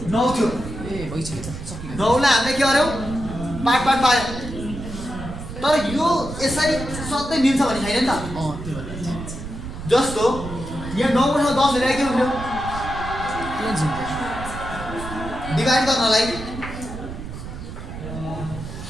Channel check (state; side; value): noise; right; rumble, 9 dB below the sound